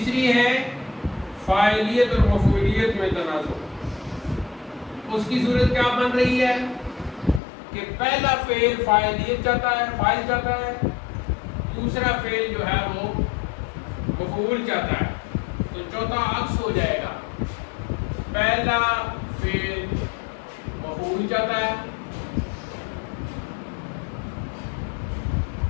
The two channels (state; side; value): drops out; right; at 7.4 s